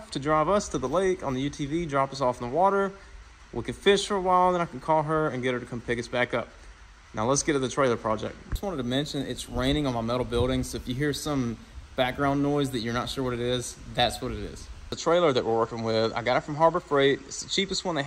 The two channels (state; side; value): identical; both; correlation 1.00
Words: to drive us to the lake on the UTV, drop us off in the water. We can fish for a while, then I can call her and get her to come pick us back up. Now let's get to the trailer project. Just wanted to mention it's raining on my metal building, so if you hear some background noise that you're not sure what it is, that's what it is. The trailer that we're working with, I got it from Harbor Freight. It's the cheapest one they